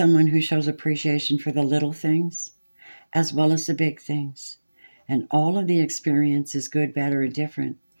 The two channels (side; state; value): both; inverted; correlation -1.00